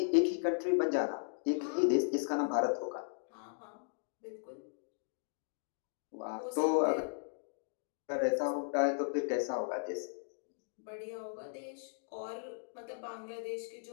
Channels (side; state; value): right; silent; digital silence